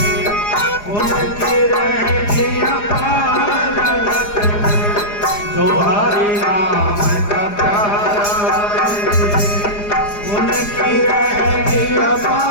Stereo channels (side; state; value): right; late; 4.9 ms